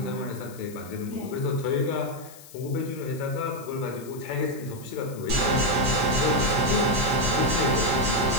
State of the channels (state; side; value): noise; left; hiss, 19 dB below the sound